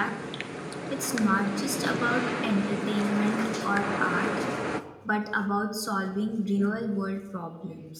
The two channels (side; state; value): both; identical; correlation 1.00